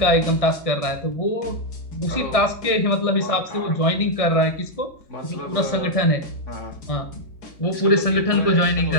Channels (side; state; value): right; late; 1.6 ms